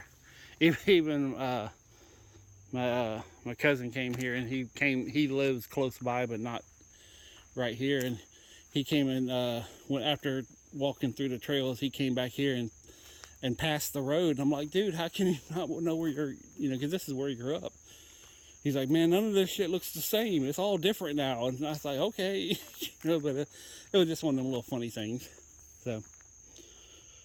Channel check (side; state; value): both; identical; correlation 1.00